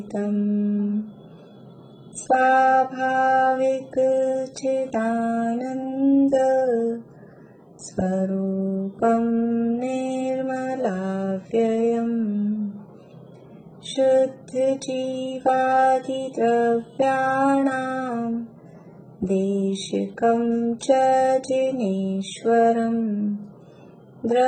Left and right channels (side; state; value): both; identical; correlation 1.00